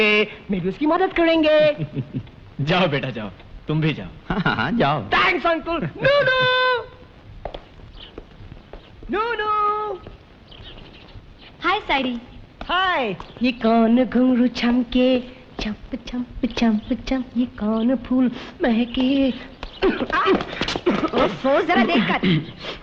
मैं भी उसकी मदद करेंगे। जाओ बेटा जाओ, तुम भी जाओ। हाँ जाओ। Thanks uncle. नूनू नूनू। हाय साइडी। हाय। ये कौन घुंघरू छमके, चंप चंप चंप चंप, ये कौन फूल महके। ओफो, जरा देखकर।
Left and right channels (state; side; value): identical; both; correlation 1.00